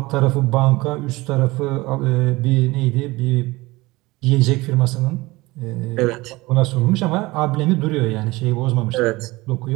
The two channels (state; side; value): quieter; left; 21.1 dB